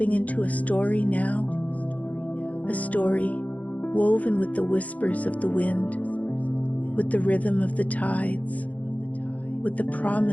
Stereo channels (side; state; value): right; late; 0.072 ms